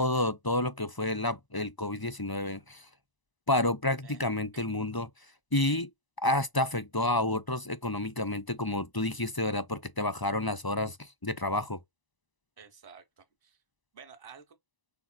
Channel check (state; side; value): late; right; 1.0 ms